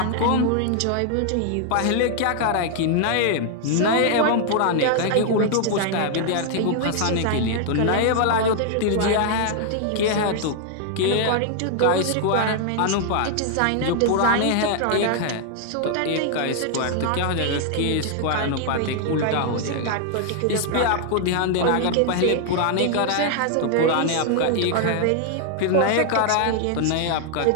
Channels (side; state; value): both; different; correlation 0.00